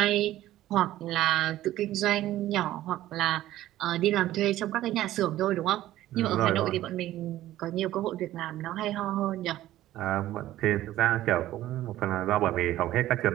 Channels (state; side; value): quieter; left; 14.4 dB